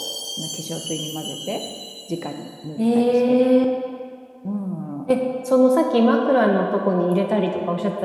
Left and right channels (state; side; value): identical; both; correlation 1.00